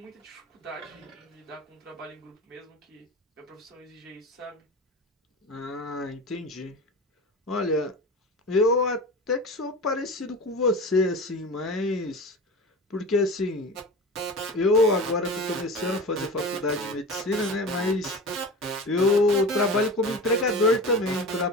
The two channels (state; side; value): normal; both; correlation 0.32